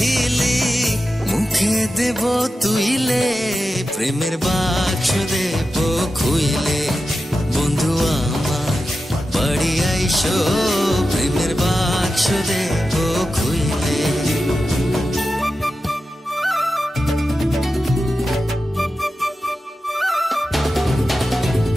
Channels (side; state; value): both; normal; correlation 0.92